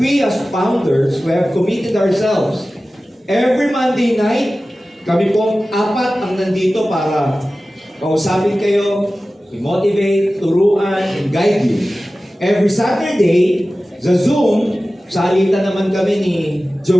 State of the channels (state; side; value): normal; both; correlation 0.96